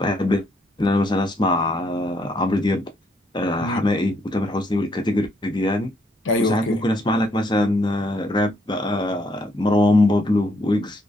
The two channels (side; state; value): both; normal; correlation 0.72